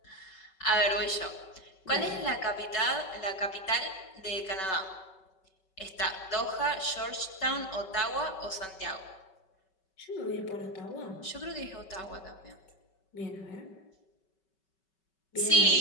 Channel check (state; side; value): late; right; 5.3 ms